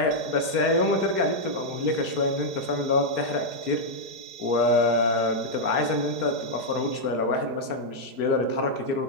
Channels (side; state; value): left; late; 4.4 ms